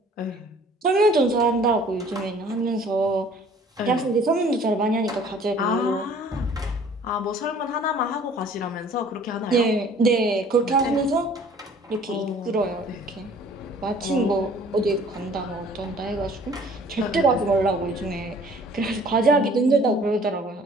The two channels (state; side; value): normal; both; correlation 0.53